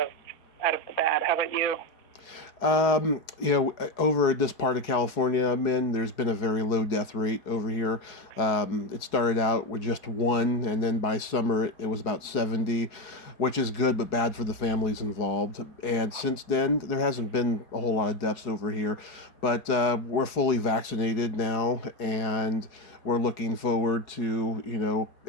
the bad. How about you? Over this part of California I'm in, there's been a very low death rate over here. It started out with just 1, and then by summer it was about 70, which is good but bad for the families involved. And since then, there hasn't been a whole lot of deaths over here, but we're fully vaccinated now, and we're looking forward to,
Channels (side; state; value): right; late; 4.8 ms